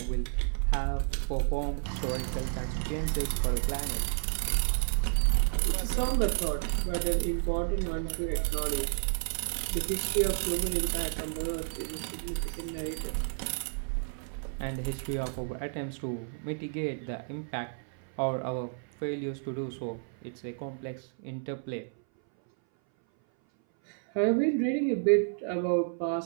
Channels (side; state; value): left; silent; 57 dB below the other